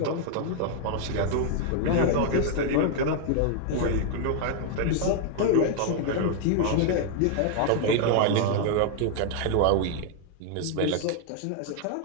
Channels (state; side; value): different; both; correlation 0.00